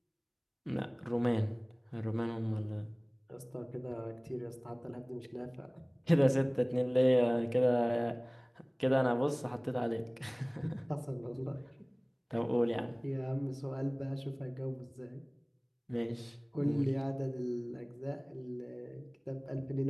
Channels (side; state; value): both; identical; correlation 1.00